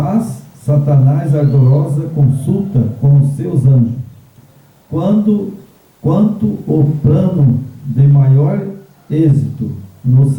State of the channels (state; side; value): identical; both; correlation 1.00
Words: Satanás ardorosa consulta com os seus anjos. Quanto o plano de maior êxito, no